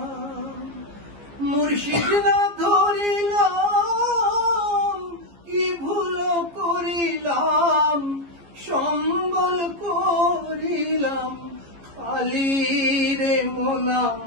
মুর্শিদ না ধরিলাম কি ভুল করিলাম সম্বল করিলাম খালি রে মন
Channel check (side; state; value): left; late; 15 ms